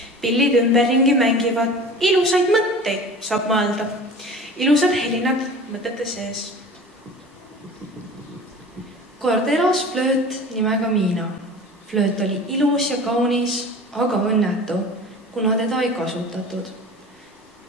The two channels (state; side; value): normal; both; correlation 0.39